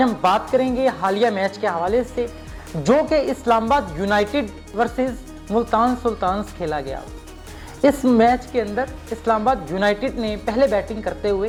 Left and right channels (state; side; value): identical; both; correlation 1.00